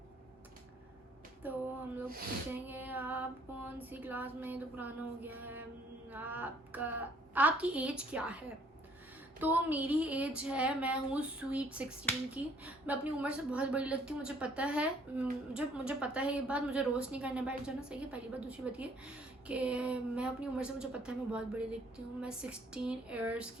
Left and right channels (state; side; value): normal; both; correlation 0.62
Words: तो हम लोग पूछेंगे आप कौन सी क्लास में, तो पुराना हो गया है। आपकी एज क्या है? तो मेरी एज है, मैं हूँ स्वीट 16 की। मैं अपनी उम्र से बहुत बड़ी लगती हूँ, मुझे पता है, मुझे पता है ये बात, मुझे रोस्ट नहीं करने बैठ जाना, सही है। पहली बात। दूसरी बात ये कि मैं अपनी उम्र से, मुझे पता है मैं बहुत बड़ी दिखती हूँ। मैं 16 ईयर्स